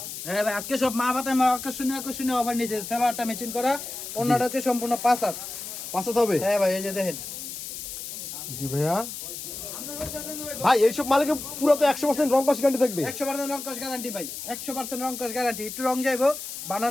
হ্যাঁ ভাই আজকে সব মা বাতায় মা আকর্ষণীয় অফার নিয়েছে। সালোয়ারটা ম্যাচিং করা, ওনাটা হচ্ছে সম্পূর্ণ 5 হাত। 5 হাত হবে? হ্যাঁ ভাই এই যে দেখেন। জি ভাইয়া। ভাই এইসব মালিকে পুরো তো 100% রং কস গ্যারান্টি থাকবে? 100% রং কস গ্যারান্টি ভাই, 100% রং কস গ্যারান্টি। একটু রং যাইবো, বানান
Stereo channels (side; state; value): left; noise; hiss, 8 dB below the sound